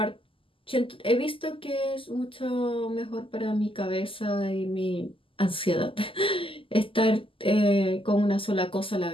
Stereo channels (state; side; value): late; right; 0.25 ms